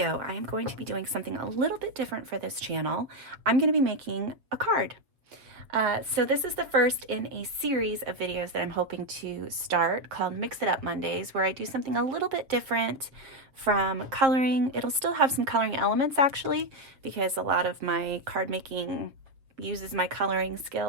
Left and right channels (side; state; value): left; late; 7.5 ms